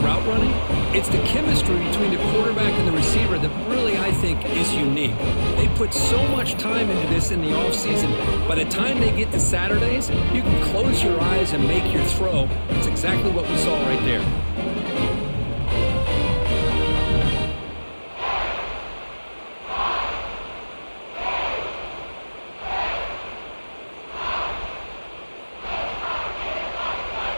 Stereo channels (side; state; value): both; inverted; correlation -1.00